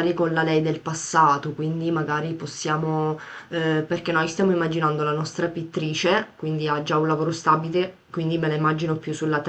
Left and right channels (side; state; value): both; identical; correlation 1.00